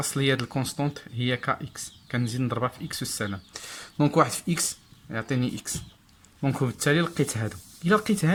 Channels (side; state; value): both; identical; correlation 1.00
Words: د الكونستونت هي ك اكس، كنزيد نضربها في اكس والسلام. دونك واحد في اكس يعطيني اكس. دونك وبالتالي لقيت هادو. الا لقيت